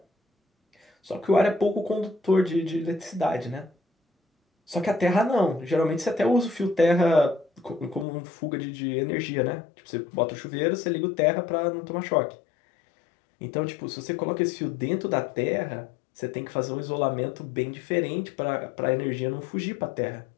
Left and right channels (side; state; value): right; drops out; at 8.1 s